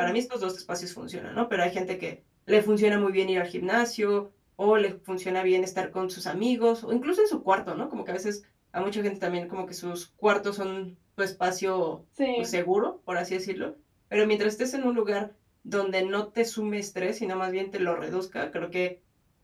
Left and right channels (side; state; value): both; identical; correlation 1.00